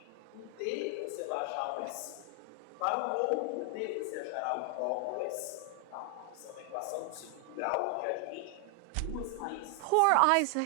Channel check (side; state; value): both; different; correlation 0.00